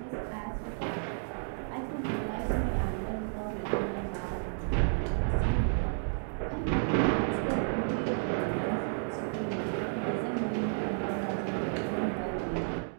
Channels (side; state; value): left; silent; digital silence